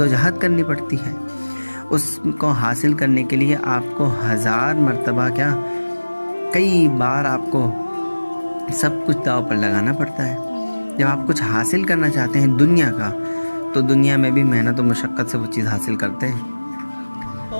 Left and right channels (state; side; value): inverted; both; correlation -1.00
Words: کرنی پڑتی ہے۔ اس کو حاصل کرنے کے لیے آپ کو 1000 مرتبہ کیا، کئی بار آپ کو سب کچھ داؤ پر لگانا پڑتا ہے۔ جب آپ کچھ حاصل کرنا چاہتے ہیں دنیا کا، تو دنیا میں بھی محنت و مشقت سے وہ چیز حاصل کرتے ہیں۔